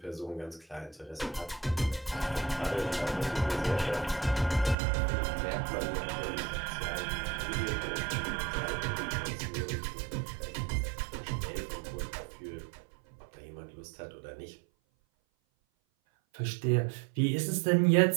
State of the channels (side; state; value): left; drops out; at 4.8 s